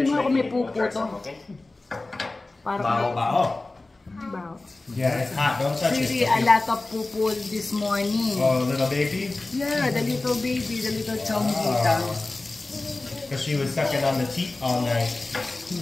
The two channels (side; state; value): right; quieter; 3.1 dB